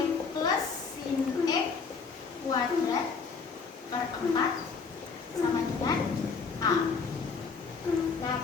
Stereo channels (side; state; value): right; quieter; 5.1 dB